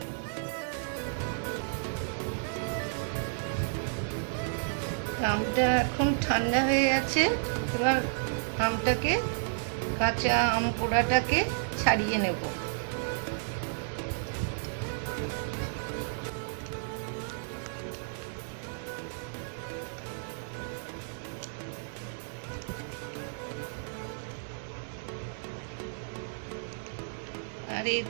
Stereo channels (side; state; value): left; silent; 56 dB below the other